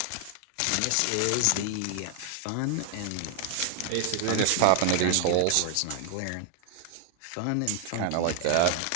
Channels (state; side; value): different; both; correlation 0.00